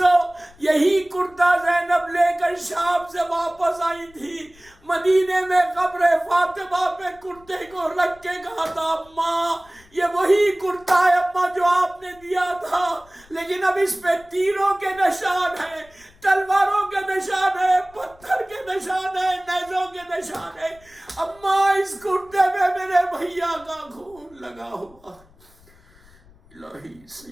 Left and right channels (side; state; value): left; noise; rumble, 27 dB below the sound